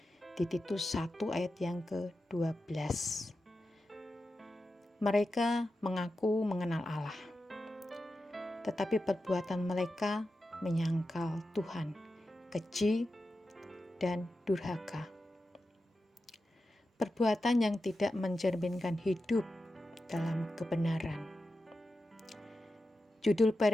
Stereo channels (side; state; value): both; normal; correlation 0.91